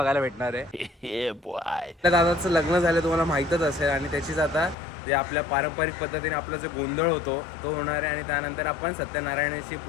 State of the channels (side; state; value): right; drops out; at 4.8 s